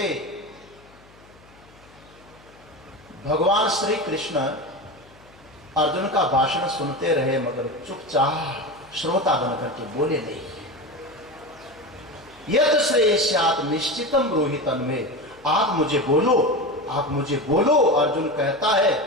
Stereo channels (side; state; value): left; noise; hum, 26 dB below the sound